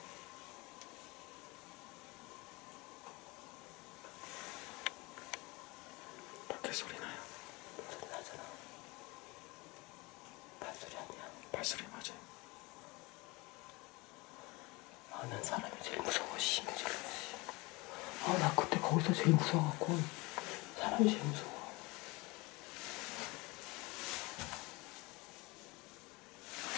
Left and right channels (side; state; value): right; quieter; 24.3 dB